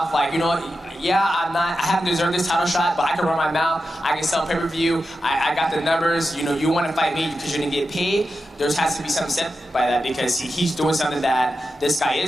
Like, you know, yeah, I haven't deserved this title shot, but I can run my mouth, I can sell pay-per-view, I got the numbers, you know, you want to fight me because you're going to get paid. There has to be something said by that because he's doing something that this guy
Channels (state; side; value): normal; both; correlation 0.90